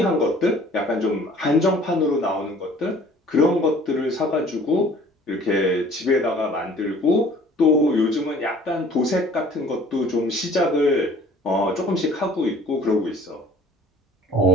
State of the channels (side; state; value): both; normal; correlation 0.51